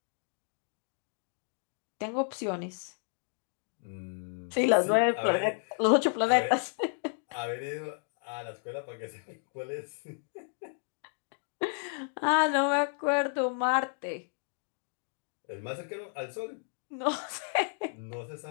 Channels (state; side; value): silent; right; 56 dB below the other